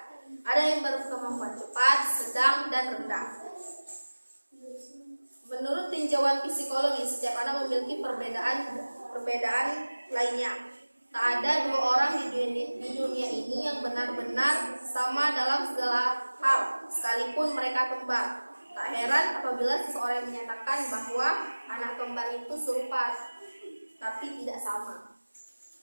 Ada yang berkemampuan cepat, sedang, dan rendah. Menurut tinjauan psikologi, setiap anak memiliki perbedaan lainnya. Tak ada dua orang di dunia ini yang benar-benar sama dalam segala hal, sekalipun mereka kembar. Tak heran apabila seseorang menyatakan bahwa anak kembar itu serupa, tapi tidak sama.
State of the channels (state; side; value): inverted; both; correlation -1.00